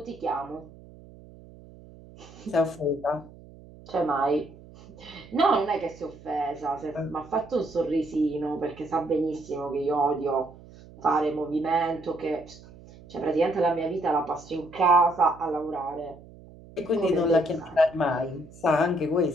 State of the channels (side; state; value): right; noise; hum, 20 dB below the sound